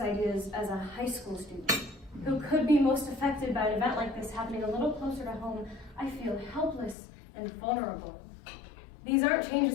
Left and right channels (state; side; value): drops out; right; at 7.0 s